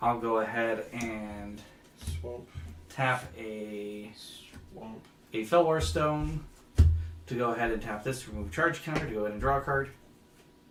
I'll go ahead and Swamp. tap a Felwar Stone to go ahead and tap this to remove a charge counter to go ahead and draw a card.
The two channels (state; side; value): identical; both; correlation 1.00